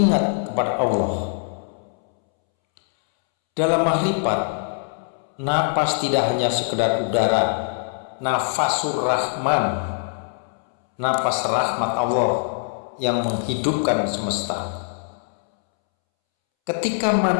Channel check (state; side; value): silent; right; 64 dB below the other